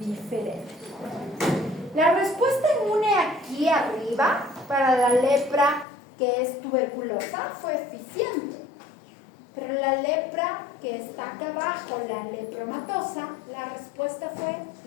La respuesta inmune aquí arriba para la lepra que es tuberculosa fue eficiente, pero la lepra que está acá abajo, la lepromatosa, la respuesta fue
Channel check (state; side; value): drops out; right; at 5.9 s